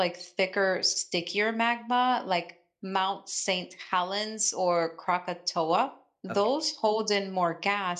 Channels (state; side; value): identical; both; correlation 1.00